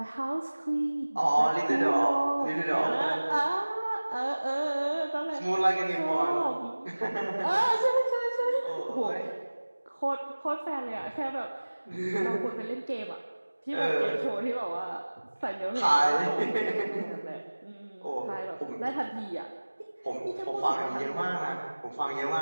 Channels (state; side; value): inverted; both; correlation -1.00